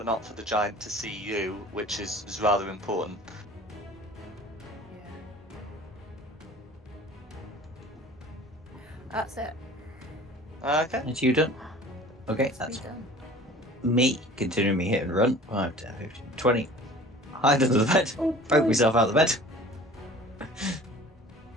not for the giant to see you, which is rather important. Yeah. That's it. Okay. It's you done. Okay, It's that's done. me continuing me hit and run. 5, 10, 15, 20. Hide under the bed. Oh, Poke myself out of the bed.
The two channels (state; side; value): normal; both; correlation 0.45